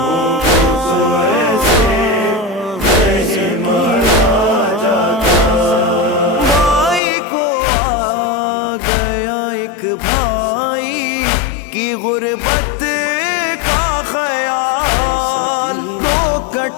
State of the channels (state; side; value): drops out; right; at 7.0 s